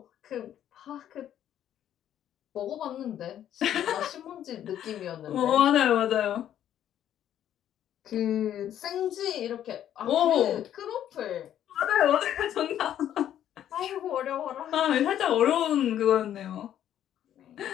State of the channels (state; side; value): quieter; right; 10.8 dB